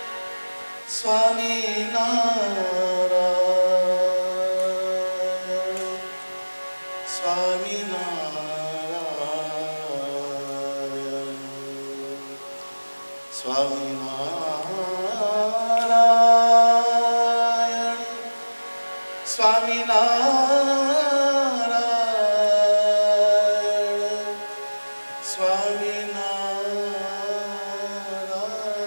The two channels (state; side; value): inverted; both; correlation -1.00